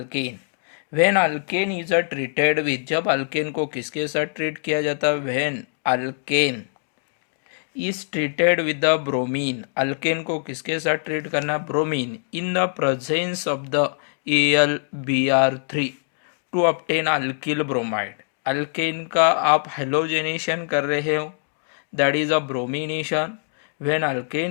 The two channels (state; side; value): silent; right; digital silence